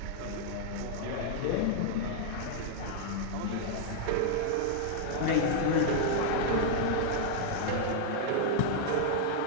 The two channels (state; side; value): different; both; correlation -0.01